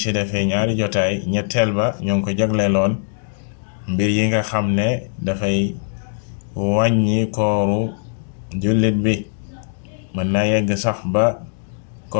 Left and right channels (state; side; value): silent; right; 65 dB below the other